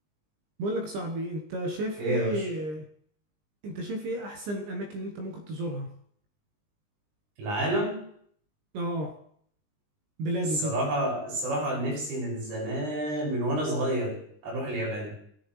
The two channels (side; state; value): left; late; 20 ms